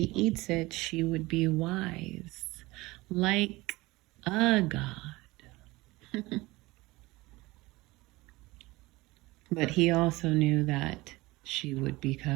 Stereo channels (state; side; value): quieter; left; 20.8 dB